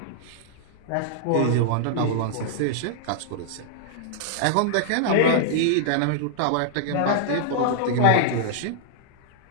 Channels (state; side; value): different; both; correlation -0.01